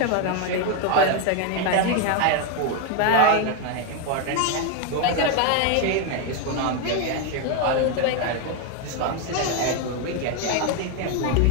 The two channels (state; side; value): different; both; correlation 0.01